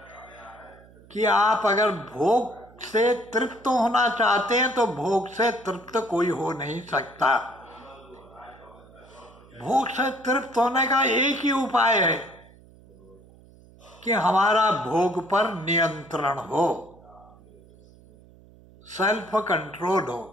कि आप अगर भोग से तृप्त होना चाहते हैं तो भोग से तृप्त कोई हो नहीं सकता। भोग से तृप्त होने का एक ही उपाय है कि हमारा भोग पर नियंत्रण हो, सेल्फ कंट्रोल हो।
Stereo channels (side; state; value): right; noise; hum, 25 dB below the sound